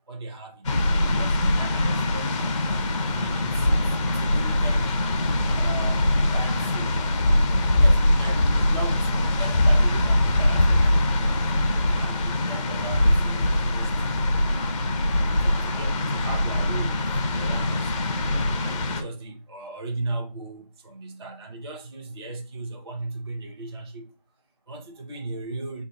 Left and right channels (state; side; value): inverted; both; correlation -0.87